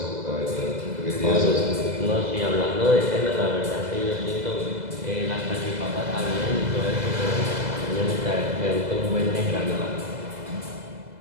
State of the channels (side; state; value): left; late; 2.0 ms